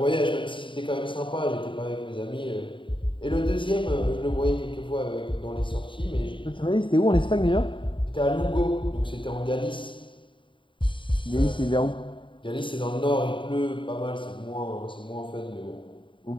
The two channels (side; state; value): right; late; 0.24 ms